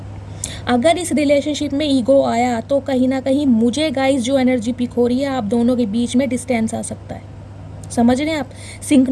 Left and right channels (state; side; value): identical; both; correlation 1.00